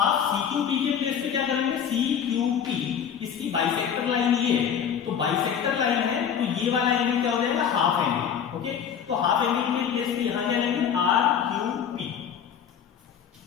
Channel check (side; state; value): right; quieter; 8.1 dB